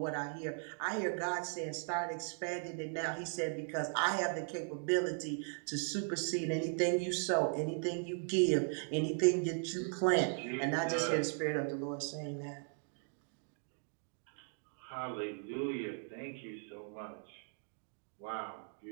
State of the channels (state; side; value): silent; left; 53 dB below the other